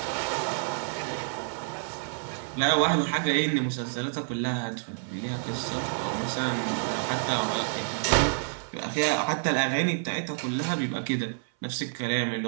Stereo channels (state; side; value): silent; left; 59 dB below the other